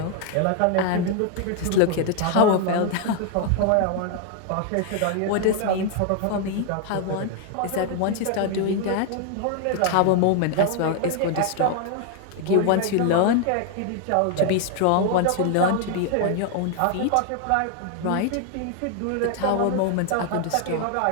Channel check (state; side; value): different; both; correlation 0.00